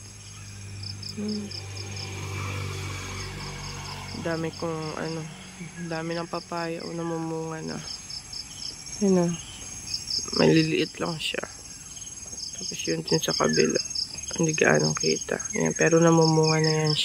Dami dami ng papaya o namumunga na. Yan na. Maliliit lang siya. Tapos yun din sa kabila. Hindi gaanong kita. Yan, pero namumunga na yan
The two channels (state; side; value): identical; both; correlation 1.00